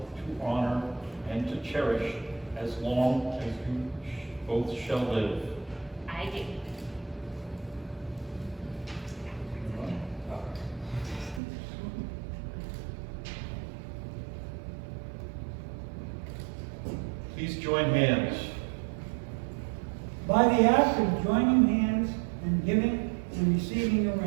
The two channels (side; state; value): left; drops out; at 11.4 s